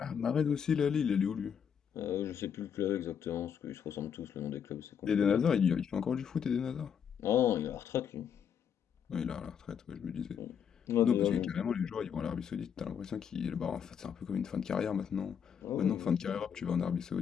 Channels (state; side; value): quieter; right; 7.8 dB